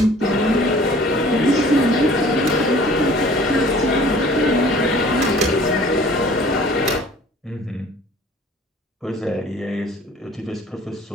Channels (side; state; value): both; normal; correlation 0.50